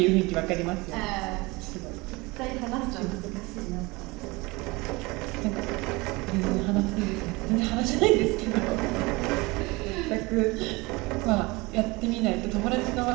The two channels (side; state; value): left; quieter; 23.9 dB